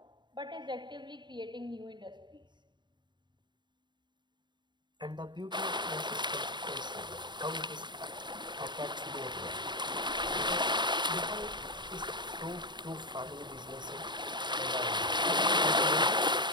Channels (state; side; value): late; left; 0.22 ms